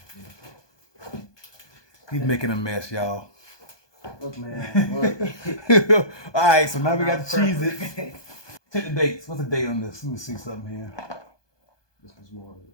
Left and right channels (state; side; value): late; right; 1.2 ms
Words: He's making a mess, y'all. Look, man. Look. All right, so now we got the Cheez-Its. Check the dates. What's the date on this? Let me see something here. This one's more.